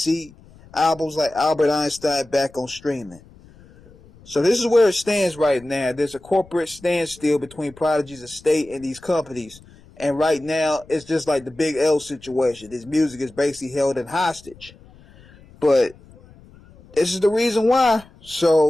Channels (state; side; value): noise; left; rumble, 24 dB below the sound